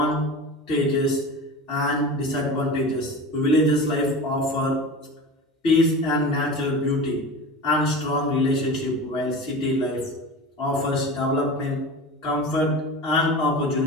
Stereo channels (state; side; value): normal; both; correlation 0.31